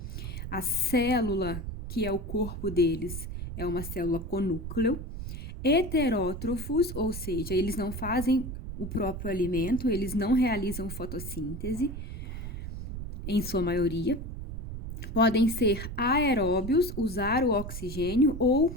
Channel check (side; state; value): right; noise; rumble, 7 dB below the sound